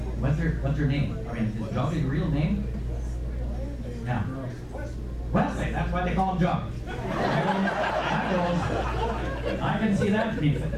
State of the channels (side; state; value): both; identical; correlation 1.00